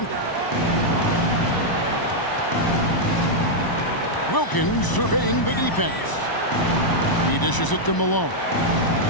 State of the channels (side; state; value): right; late; 1.0 ms